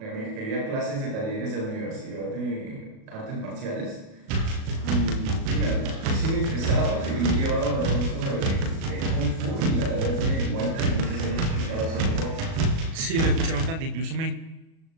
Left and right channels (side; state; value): left; late; 37 ms